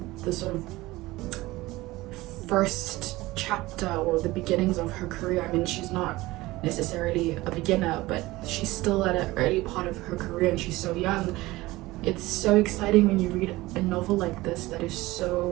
the sort of first chapter or the beginnings of her career, I mean, she's not necessarily a beginner, but she's still at an early part of her career and she's so young. It's so exciting when you read a novel like this that is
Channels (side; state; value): left; quieter; 19.2 dB